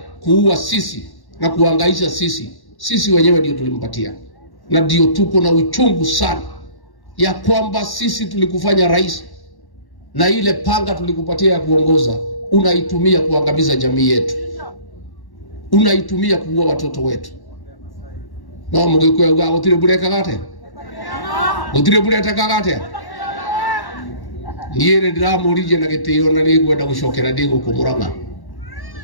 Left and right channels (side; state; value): right; late; 1.1 ms